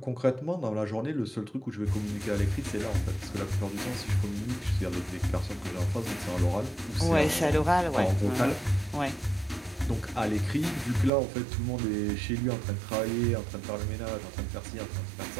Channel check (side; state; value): left; drops out; at 11.1 s